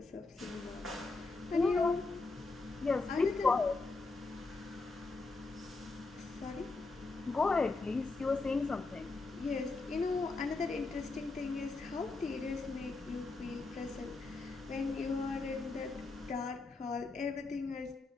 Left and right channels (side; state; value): right; quieter; 3.7 dB